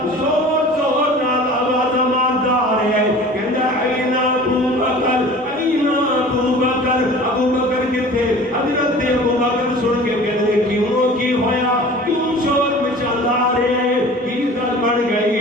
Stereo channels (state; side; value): normal; both; correlation 0.42